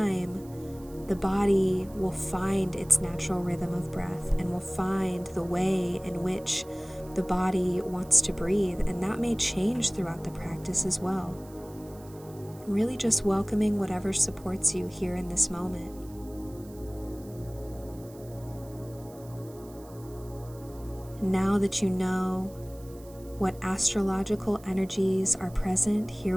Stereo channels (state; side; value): noise; right; hiss, 23 dB below the sound